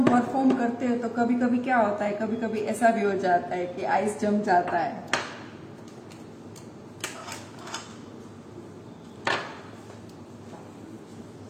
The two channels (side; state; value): both; identical; correlation 1.00